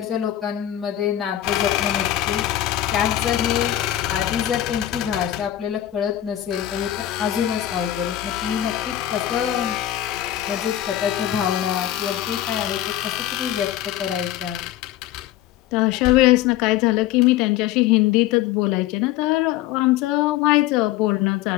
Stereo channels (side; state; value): right; quieter; 12.9 dB